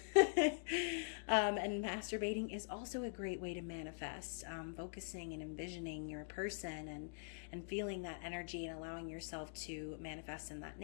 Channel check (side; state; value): right; silent; digital silence